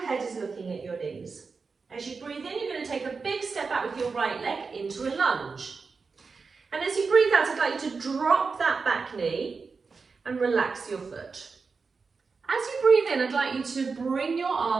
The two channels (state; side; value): quieter; left; 4.8 dB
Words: head is looking at your knees. As you breathe in, you're going to take a big step out with your right leg into a lunge. And as you breathe out, I'd like you to drop that back knee and relax your foot. As you breathe in, I'd like you to bring your